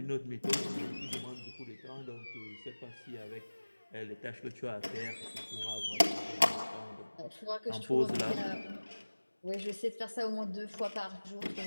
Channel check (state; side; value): inverted; both; correlation -1.00